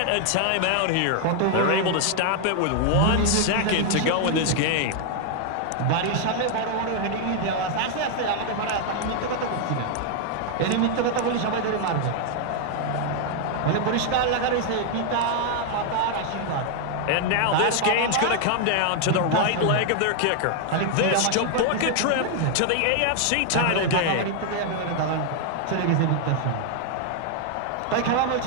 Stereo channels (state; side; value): different; both; correlation 0.00